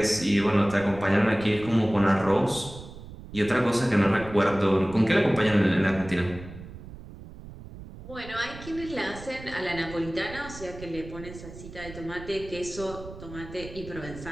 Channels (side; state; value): right; noise; rumble, 14 dB below the sound